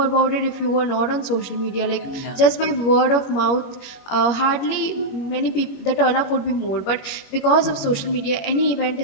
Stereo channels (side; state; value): right; late; 21 ms